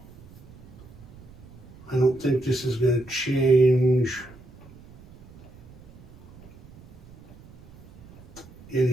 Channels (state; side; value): noise; right; rumble, 21 dB below the sound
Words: I don't think this is going to change